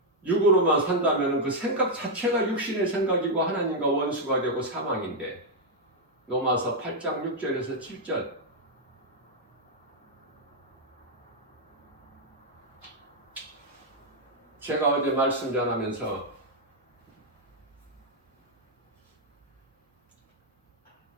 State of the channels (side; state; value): both; normal; correlation -0.01